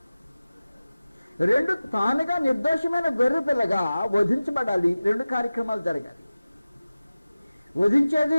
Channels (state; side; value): inverted; both; correlation -0.97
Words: 2 తానుగా నిర్దోషమైన గొర్రె పిల్లగా వధించబడాలి. 2 కార్యక్రమాలు జరగాలి.